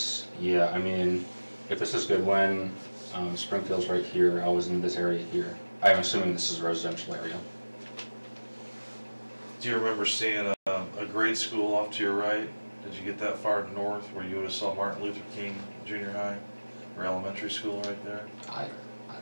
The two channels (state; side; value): inverted; both; correlation -1.00